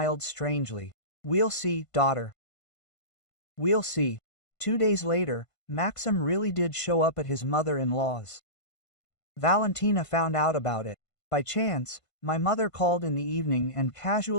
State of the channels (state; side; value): late; right; 1.5 ms